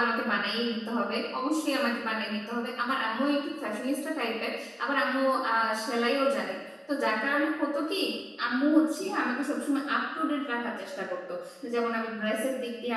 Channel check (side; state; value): both; identical; correlation 1.00